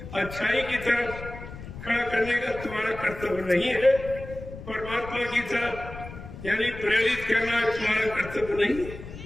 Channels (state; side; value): noise; left; rumble, 12 dB below the sound